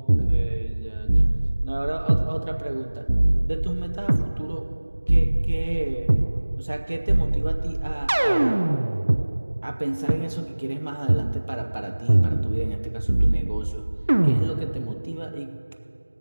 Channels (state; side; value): inverted; both; correlation -1.00